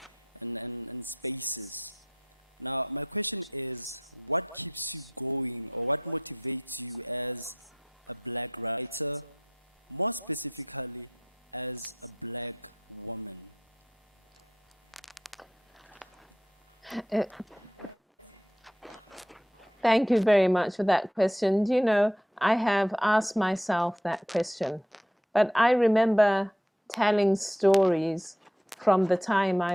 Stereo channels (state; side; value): normal; both; correlation 0.77